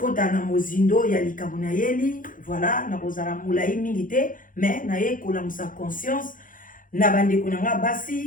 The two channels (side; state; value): right; late; 0.39 ms